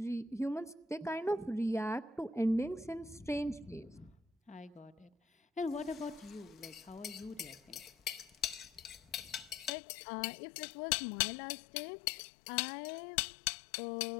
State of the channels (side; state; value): right; drops out; at 9.7 s